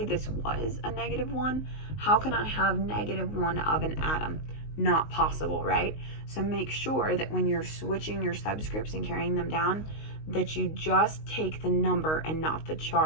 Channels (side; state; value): right; late; 19 ms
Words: this was a -1. How can I have -1 of an atom? Not possible, right? So make sure that when you're switching your subscripts and carrying them down, that you just take the number and not the